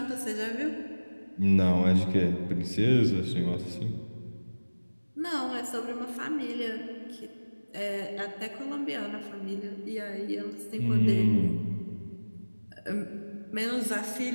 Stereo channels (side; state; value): both; inverted; correlation -1.00